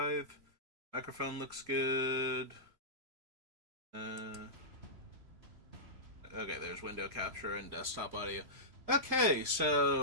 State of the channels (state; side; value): late; left; 3.0 ms